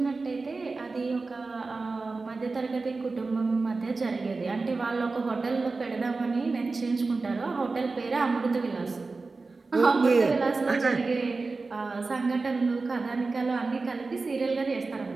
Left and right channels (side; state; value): left; quieter; 3.9 dB